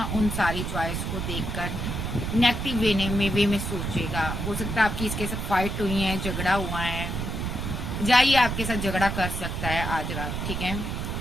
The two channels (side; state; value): right; noise; rumble, 3 dB below the sound